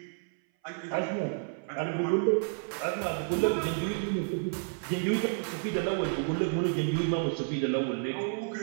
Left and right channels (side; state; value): left; silent; 57 dB below the other